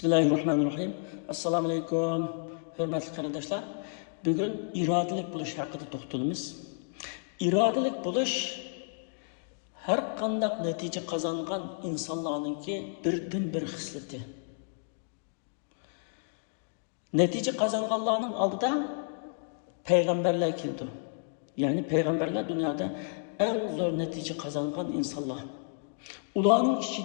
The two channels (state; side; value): silent; right; digital silence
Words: Assalamu alaykum. Hürmetli kardeşler. Bugün iradelijk buluş hakkında toxtalımız. İradelijk buluş her qandaq netice kazangan insanlarınki birden bir xisleti. Netice kazanganlarının aldıda peygamberler keldi. Yani peygamberler dünyada en zor netice kazangan insanlar. Ularning